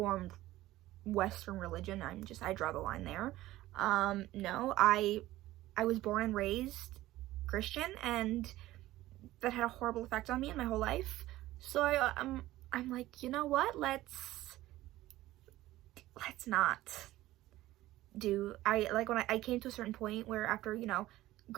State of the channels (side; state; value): left; quieter; 16.1 dB